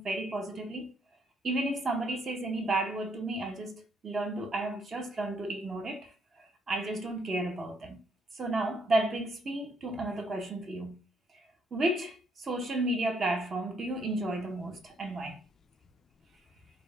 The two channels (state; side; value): normal; both; correlation 0.71